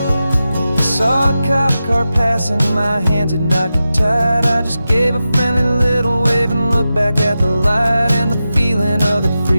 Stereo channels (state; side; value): inverted; both; correlation -0.92